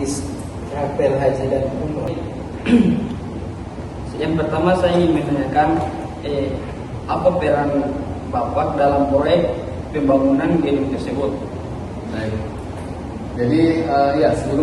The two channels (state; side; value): identical; both; correlation 1.00